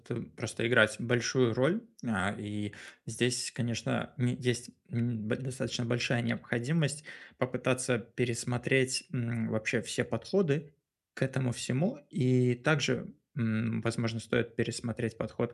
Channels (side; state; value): both; identical; correlation 1.00